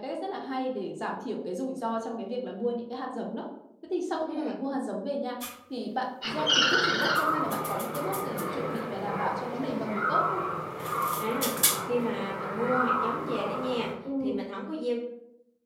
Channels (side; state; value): both; identical; correlation 1.00